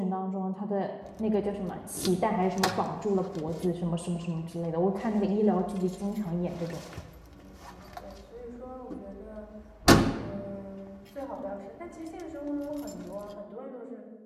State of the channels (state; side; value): identical; both; correlation 1.00